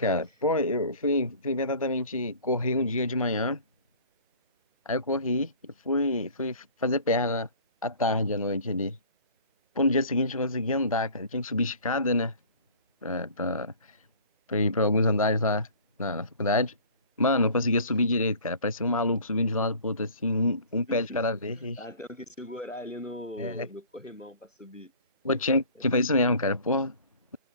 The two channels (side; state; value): both; inverted; correlation -0.46